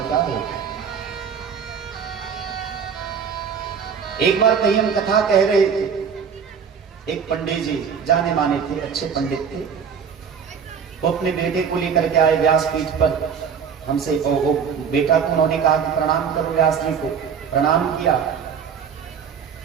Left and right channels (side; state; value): left; quieter; 6.9 dB